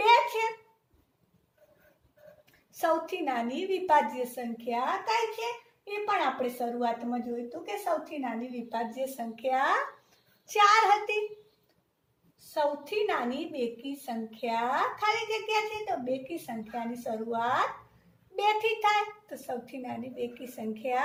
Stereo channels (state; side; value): identical; both; correlation 1.00